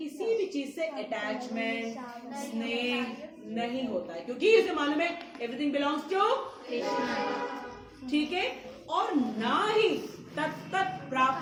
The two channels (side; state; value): both; identical; correlation 1.00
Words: भी चीज से अटैचमेंट स्नेह नहीं होता है, क्योंकि इसे मालूम है एवरीथिंग बिलोंग्स टू कृष्णा, ठीक है। और ना ही तत्त